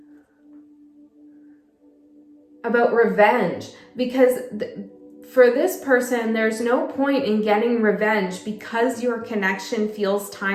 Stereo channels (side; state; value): both; identical; correlation 1.00